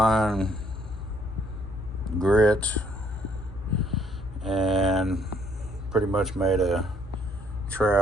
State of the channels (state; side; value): normal; both; correlation 0.66